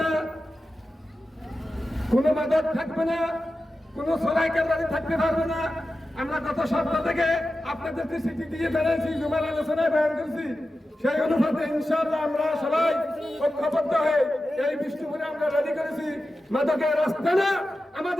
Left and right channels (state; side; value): normal; both; correlation 0.93